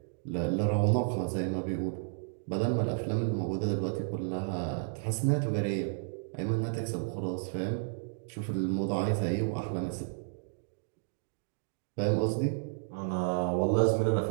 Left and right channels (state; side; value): silent; left; digital silence